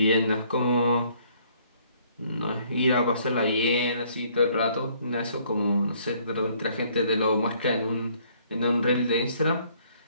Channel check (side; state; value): both; inverted; correlation -0.63